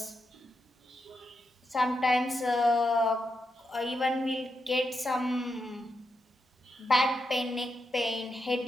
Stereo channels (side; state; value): both; normal; correlation 0.85